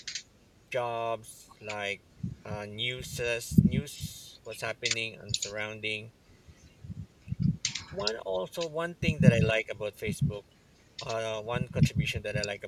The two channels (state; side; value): identical; both; correlation 1.00